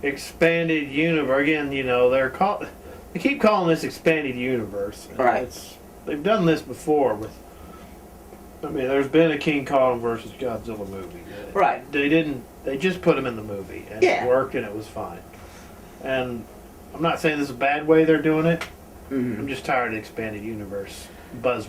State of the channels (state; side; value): identical; both; correlation 1.00